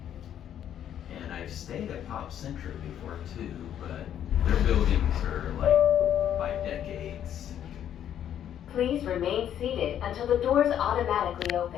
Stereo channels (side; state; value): right; quieter; 10.1 dB